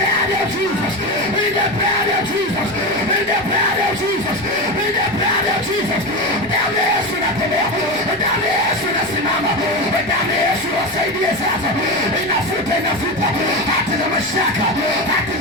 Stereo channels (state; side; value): noise; left; rumble, 23 dB below the sound